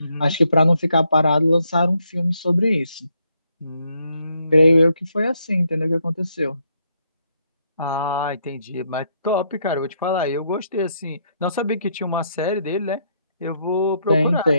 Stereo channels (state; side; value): inverted; both; correlation -0.75